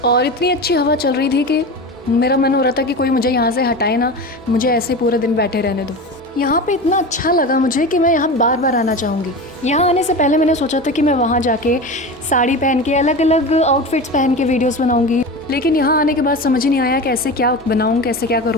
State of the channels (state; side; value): normal; both; correlation 0.28